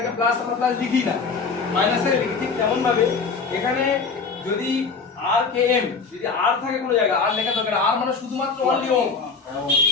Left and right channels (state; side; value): quieter; right; 4.9 dB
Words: আগে প্লাস আমরা প্লাস লিখি না, মাইনাস থেকে লিখি, ঠিক তেমন ভাবে এখানে যদি আর কে এম যদি আর থাকে কোনো জায়গায় আর লেখা দরকার, আর মানে শুধুমাত্র অনলি ওম।